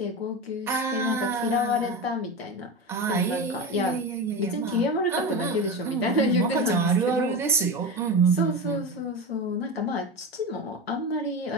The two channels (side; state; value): both; normal; correlation 0.23